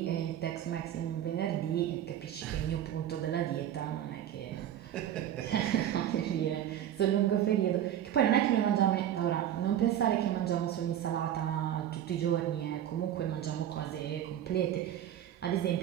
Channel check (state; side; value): quieter; left; 11.0 dB